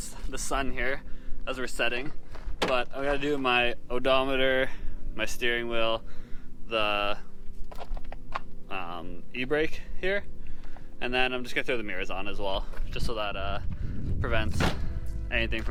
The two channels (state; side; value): identical; both; correlation 1.00